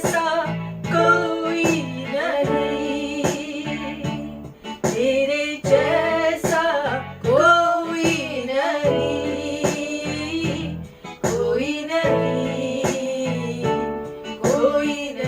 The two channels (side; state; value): both; identical; correlation 1.00